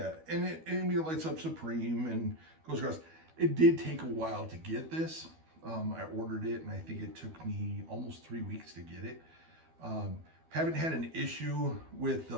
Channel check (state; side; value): late; left; 12 ms